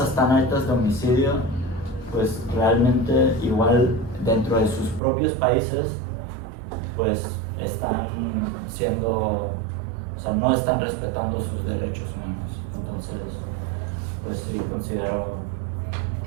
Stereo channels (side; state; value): left; drops out; at 5.0 s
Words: tan altas de homicidio, pues realmente igual dentro de sus propios países pues están no están respetando sus derechos humanos. Entonces pues sí considero